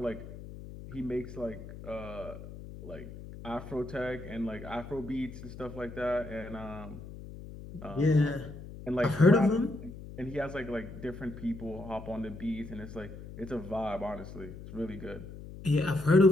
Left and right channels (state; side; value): noise; left; hum, 13 dB below the sound